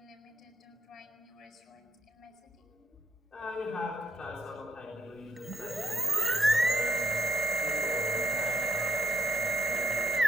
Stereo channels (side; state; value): both; normal; correlation 0.77